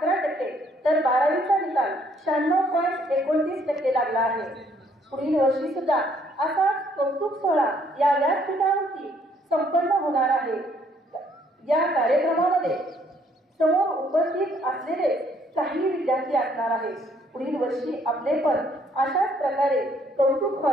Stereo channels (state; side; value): normal; both; correlation 0.66